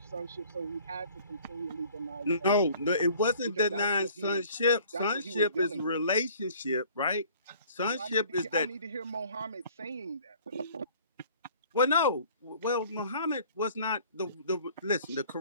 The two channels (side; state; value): both; inverted; correlation -0.52